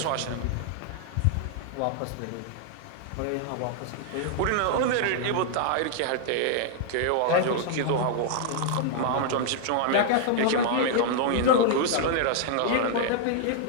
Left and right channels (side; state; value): both; different; correlation -0.01